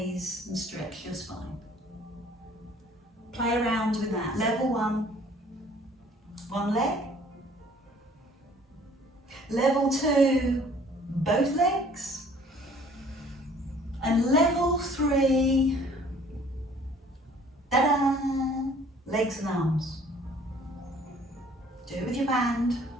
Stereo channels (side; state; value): both; normal; correlation 0.55